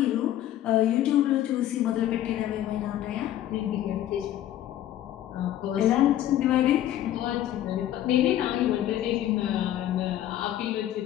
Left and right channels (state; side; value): quieter; right; 12.4 dB